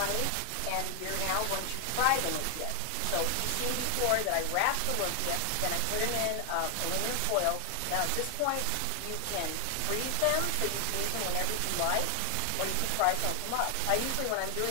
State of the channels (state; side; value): different; both; correlation 0.00